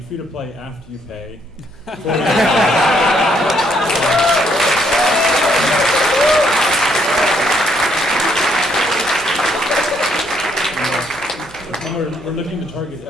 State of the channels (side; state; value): right; noise; hum, 25 dB below the sound